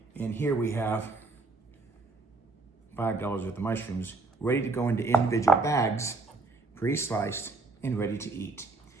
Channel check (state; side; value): quieter; left; 3.7 dB